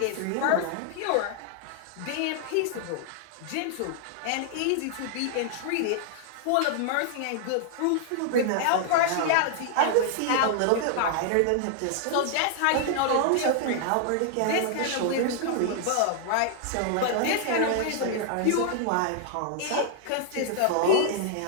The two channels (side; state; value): both; different; correlation 0.00